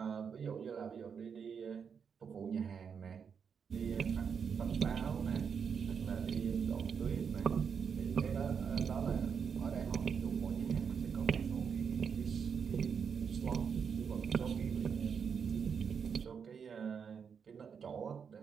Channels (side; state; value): left; quieter; 6.7 dB